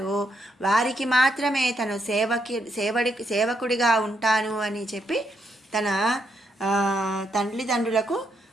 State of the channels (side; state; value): both; normal; correlation 0.79